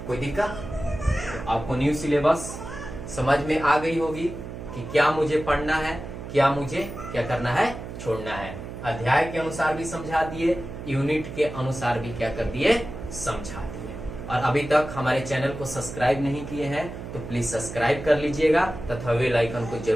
कोई दिक्कत? तो आपको न्यू सिलेबस समझ में आ गई होगी कि क्या मुझे पढ़ना है, क्या मुझे क्या करना है, छोड़ना है। अध्याय के अनुसार भी समझा दिए, यूनिट के अनुसार भी क्या कर दिए, समझा दिए। और अभी तक हमारे चैनल को सब्सक्राइब नहीं किए हैं तो प्लीज सब्सक्राइब कर लीजिएगा तथा बेल आइकन को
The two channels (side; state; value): right; noise; hum, 10 dB below the sound